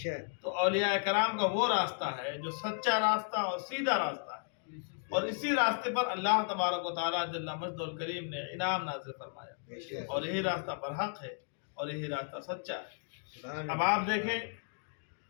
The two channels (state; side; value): silent; right; 55 dB below the other